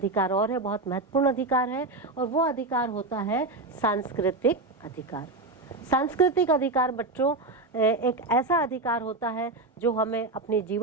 और है, बहुत महत्वपूर्ण अधिकार है, और वो अधिकार होता है सांस्कृतिक अधिकार। सांस्कृतिक अधिकार बच्चों एक ऐसा अधिकार होता है जो हमें अपनी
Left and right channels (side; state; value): left; quieter; 3.1 dB